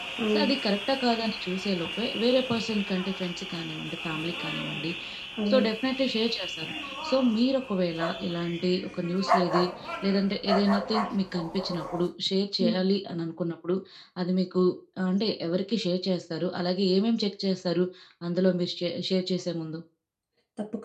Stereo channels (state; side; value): identical; both; correlation 1.00